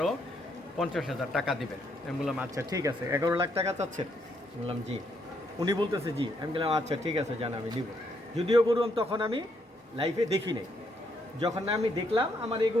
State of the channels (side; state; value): both; normal; correlation 0.74